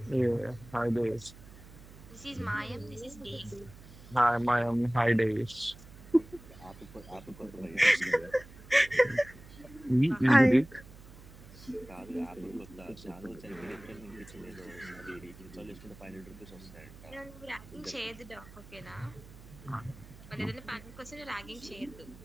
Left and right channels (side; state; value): right; noise; hum, 18 dB below the sound